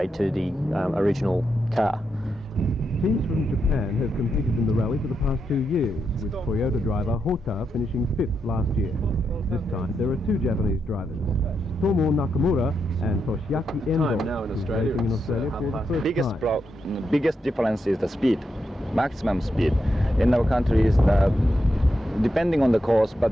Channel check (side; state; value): both; normal; correlation 0.84